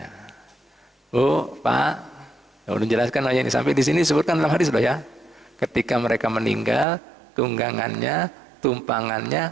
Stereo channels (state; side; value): drops out; left; at 6.9 s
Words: Oh, Pak, udah jelaskan aja ini sampai di sini disebutkan dalam hadis loh ya. Ketika mereka meninggal, tunggangannya,